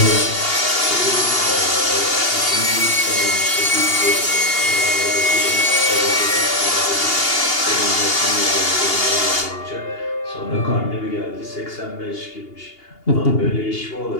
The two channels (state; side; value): late; right; 2.8 ms